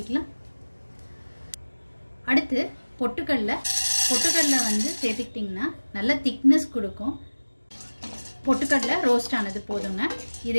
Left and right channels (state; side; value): inverted; both; correlation -1.00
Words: அடுத்து பொட்டுக்கடலை சேர்த்துக்கிட்டிங்கன்னா நல்ல திக்னஸ் கொடுக்கும். பொட்டுக்கடலை ரோஸ்ட் ஆனது போதுங்க.